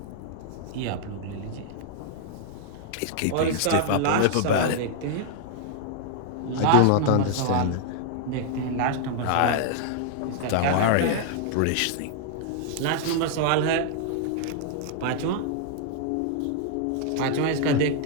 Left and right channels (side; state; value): both; different; correlation 0.00